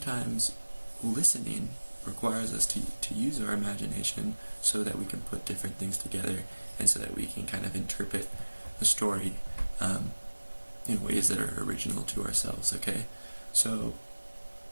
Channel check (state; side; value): inverted; both; correlation -1.00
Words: listening requires us to use our imagination so that we can put different things together and so that we can kind of interpret the story in ways that are original to ourselves, okay? So